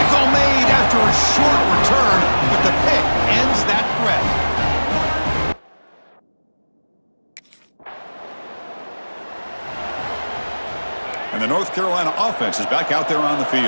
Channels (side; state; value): both; inverted; correlation -1.00